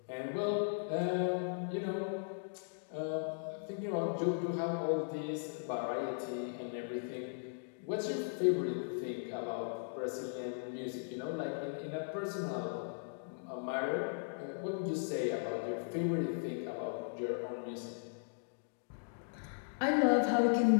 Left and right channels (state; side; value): silent; right; digital silence